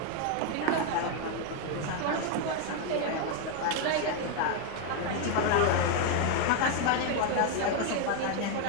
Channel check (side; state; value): both; different; correlation 0.01